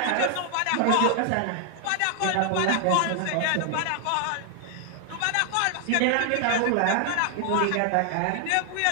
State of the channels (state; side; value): different; both; correlation 0.00